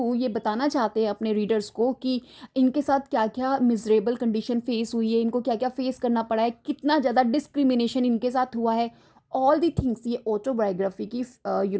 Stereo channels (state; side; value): identical; both; correlation 1.00